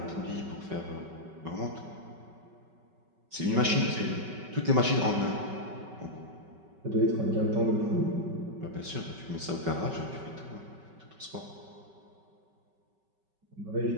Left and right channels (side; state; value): left; late; 5.3 ms